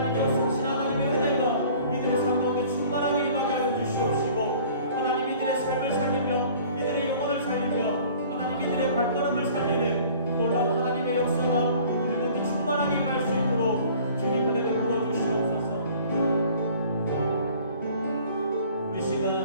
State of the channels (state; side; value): inverted; both; correlation -0.50